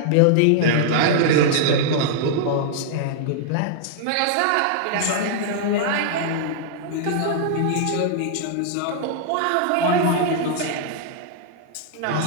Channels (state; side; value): different; both; correlation -0.01